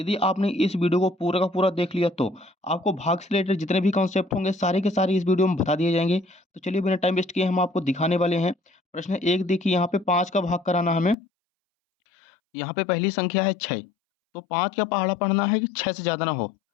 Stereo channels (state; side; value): drops out; right; at 11.2 s